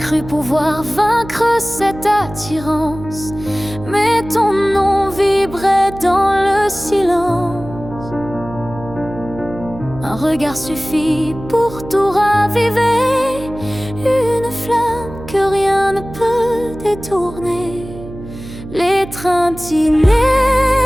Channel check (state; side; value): noise; right; hum, 14 dB below the sound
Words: pouvoir vaincre cette attirance, mais ton nom vibrait dans le silence. Un regard suffit pour tout raviver, une flamme que rien ne peut détourner. L'étreinte inévitable,